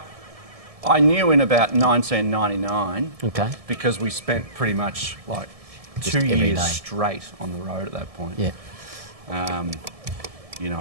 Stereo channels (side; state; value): left; late; 1.7 ms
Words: I knew in about 1999 Okay. because we spent pretty much like Just 2 every years day. straight on the road at that point. Yeah. You know,